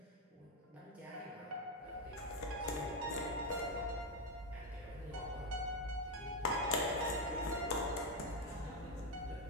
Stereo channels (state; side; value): normal; both; correlation 0.06